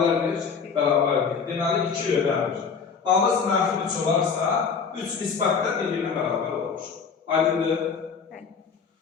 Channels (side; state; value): right; quieter; 5.9 dB